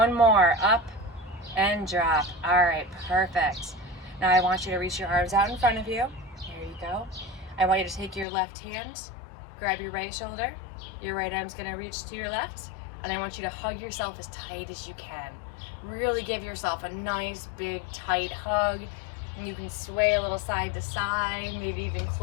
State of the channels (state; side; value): drops out; right; at 8.2 s